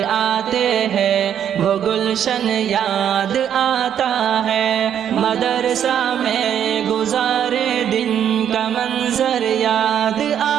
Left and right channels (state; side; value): quieter; left; 9.3 dB